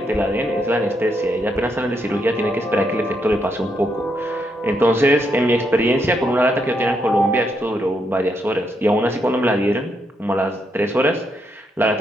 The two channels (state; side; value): normal; both; correlation 0.78